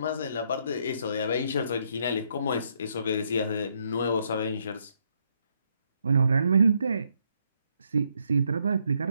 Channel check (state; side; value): inverted; both; correlation -0.74